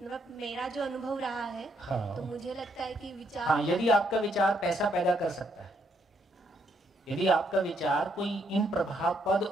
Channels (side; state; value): both; normal; correlation 0.73